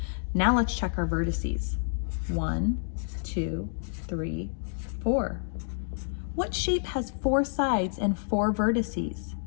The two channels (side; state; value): right; silent; digital silence